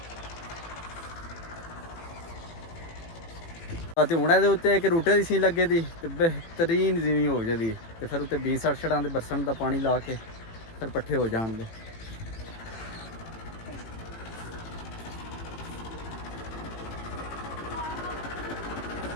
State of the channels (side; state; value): right; late; 18 ms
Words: तो हुण इहदे उत्ते एक रूटे की सीन लगे दी ते बेहतरीन जीवी हो जाती तो फिर उत्ते 20 छड़ां दे बरसन का पानी ला के फिर पट्ठे हो जाण दे।